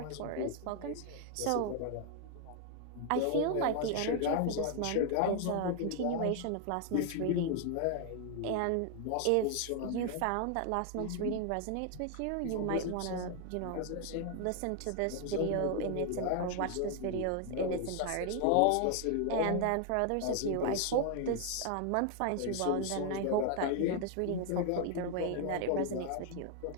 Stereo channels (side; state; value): both; different; correlation 0.00